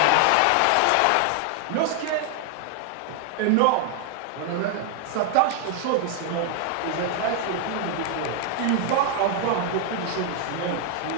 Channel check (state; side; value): different; both; correlation 0.00